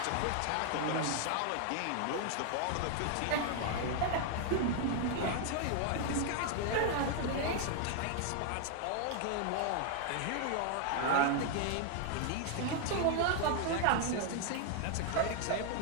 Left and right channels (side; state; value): both; different; correlation 0.00